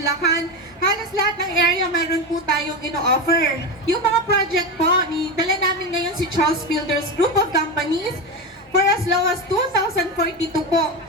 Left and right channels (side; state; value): both; normal; correlation 0.17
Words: Halos lahat ng area meron po tayong ino-offer. Yung mga project po, dala namin ngayon si Charles Builders Group of Companies for as low as 2,042 po.